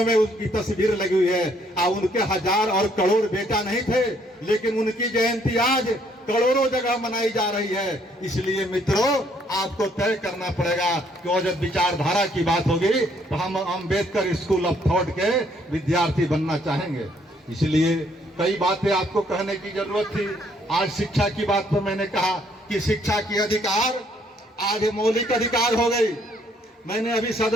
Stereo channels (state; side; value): normal; both; correlation 0.67